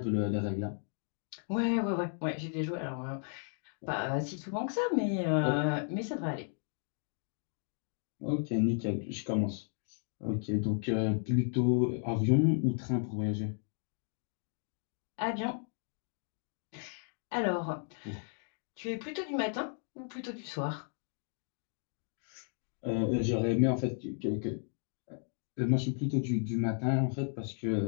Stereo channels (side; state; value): right; silent; 55 dB below the other